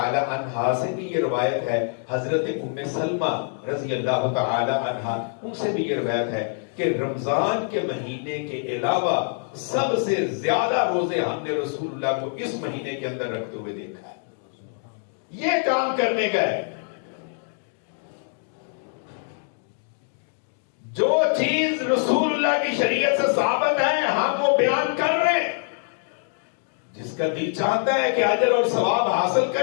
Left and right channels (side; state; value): right; silent; digital silence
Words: عنہا سے بھی یہ روایت ہے، حضرت ام سلمہ رضی اللہ تعالی عنہا ان سے بھی یہ روایت ہے کہ رمضان کے مہینے کے علاوہ سب سے زیادہ روزے ہم نے رسول اللہ کو اس مہینے کے اندر رکھتے ہوئے دیکھا ہے. یہ کام کرنے کا ہے. جو چیز رسول اللہ کی شریعت سے ثابت ہے ہم وہ بیان کر رہے ہیں. جس کا دل چاہتا ہے کہ اجر اور ثواب حاصل